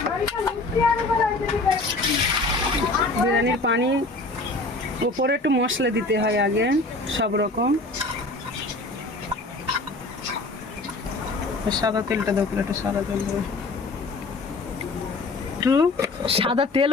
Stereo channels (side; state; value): right; quieter; 3.1 dB